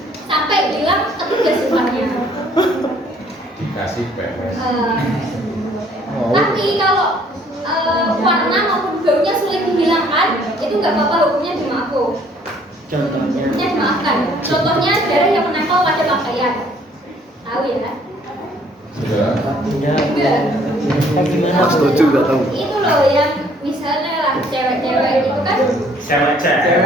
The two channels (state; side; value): normal; both; correlation 0.61